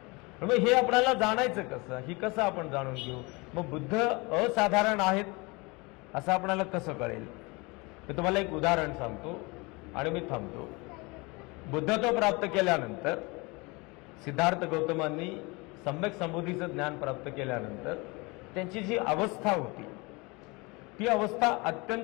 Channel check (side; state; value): right; quieter; 26.4 dB